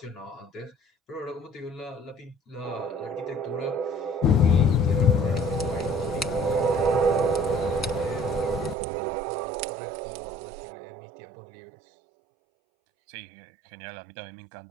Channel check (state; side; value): drops out; left; at 8.8 s